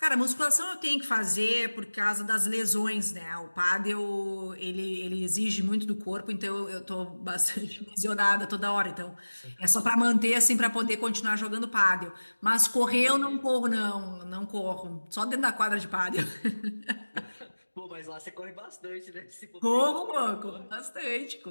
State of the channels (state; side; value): inverted; both; correlation -1.00